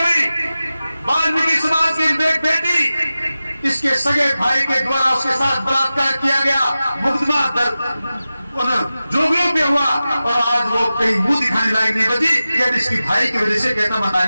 वाल्मीकि समाज की एक बेटी, इसके सगे भाई के द्वारा उसके साथ बलात्कार किया गया, मुकदमा जोगियों पे हुआ और आज वो कहीं मुंह दिखाने लायक नहीं बची। यदि इसकी भाई की वजह से कहता मैं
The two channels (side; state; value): both; inverted; correlation -0.94